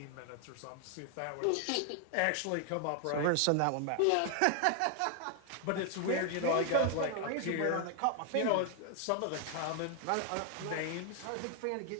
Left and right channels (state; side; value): different; both; correlation 0.00